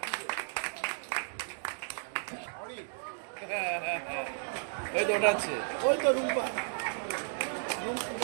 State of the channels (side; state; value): left; silent; digital silence